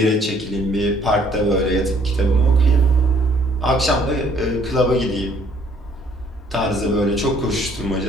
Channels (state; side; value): normal; both; correlation 0.62